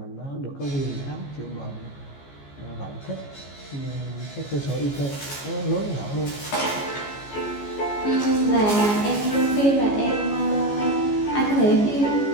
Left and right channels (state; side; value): late; right; 14 ms